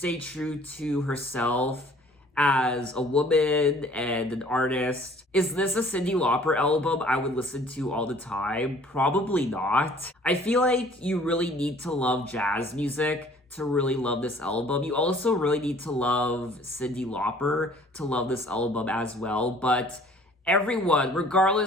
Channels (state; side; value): normal; both; correlation 0.54